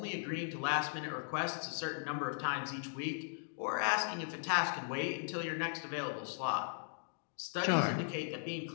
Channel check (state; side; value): silent; right; digital silence